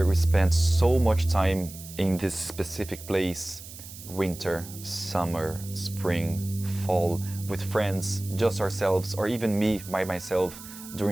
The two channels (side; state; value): right; noise; hiss, 15 dB below the sound